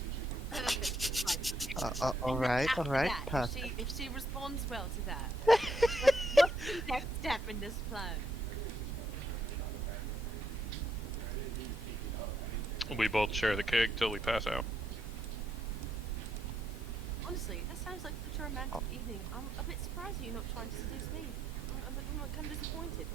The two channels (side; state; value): both; normal; correlation 0.76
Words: Alright, After that, perfect. if she responds well to that, what's the next step in this plan? We both share the keg till we pass out. Honestly, that sounds like such a romantic evening. I'm a bit surprised you're not trying to seduce me. I'm kind of disappointed.